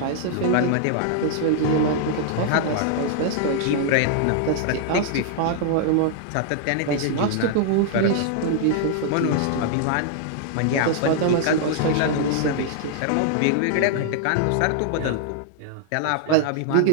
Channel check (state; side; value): different; both; correlation -0.01